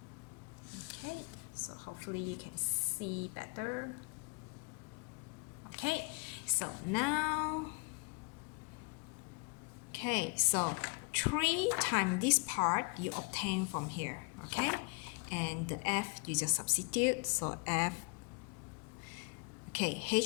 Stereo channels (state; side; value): quieter; right; 32.2 dB